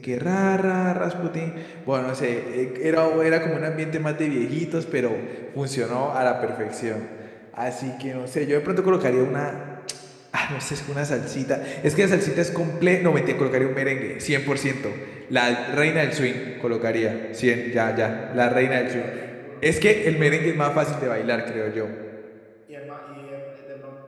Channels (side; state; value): both; identical; correlation 1.00